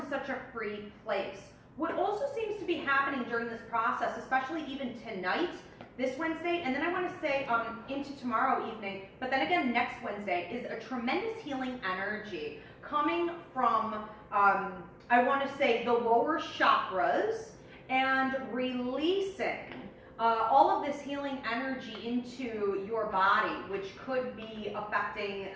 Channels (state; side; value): identical; both; correlation 1.00